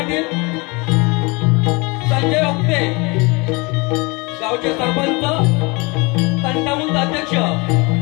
संजय ओक्ते, गावचे सरपंच तंटामुक्त अध्यक्ष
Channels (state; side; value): quieter; right; 27.2 dB